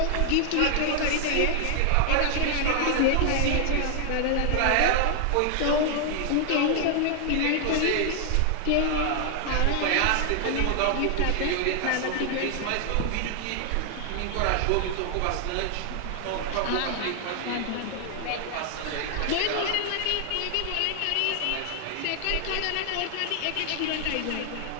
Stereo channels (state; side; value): different; both; correlation 0.00